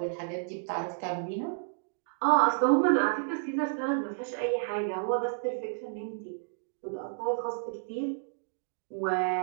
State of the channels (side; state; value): left; silent; digital silence